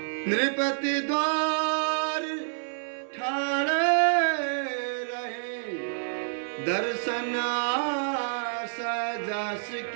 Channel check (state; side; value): silent; left; digital silence